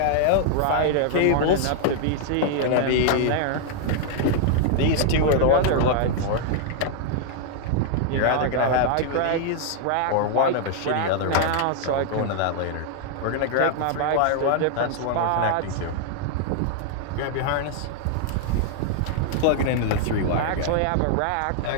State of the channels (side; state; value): both; different; correlation 0.00